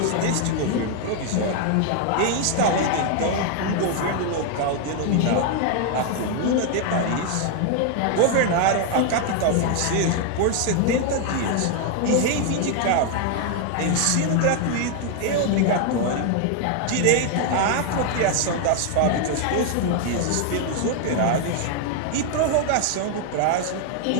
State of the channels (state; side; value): different; both; correlation 0.00